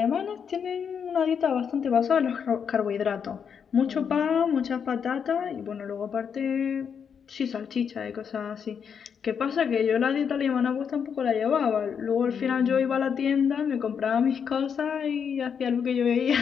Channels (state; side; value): quieter; right; 7.1 dB